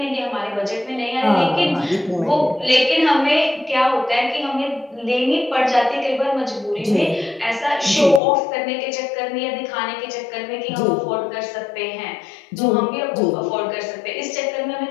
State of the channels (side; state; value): right; drops out; at 8.2 s